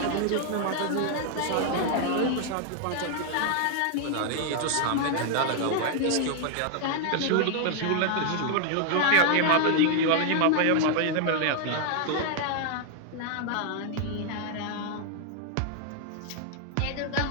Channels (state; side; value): different; both; correlation 0.00